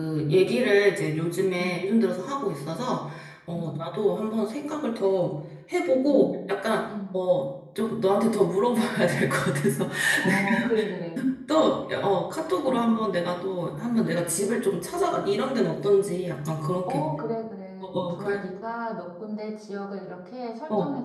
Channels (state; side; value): identical; both; correlation 1.00